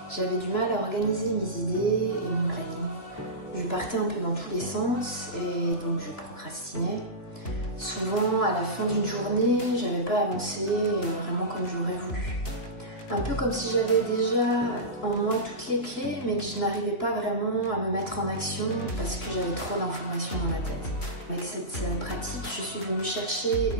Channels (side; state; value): right; late; 2.9 ms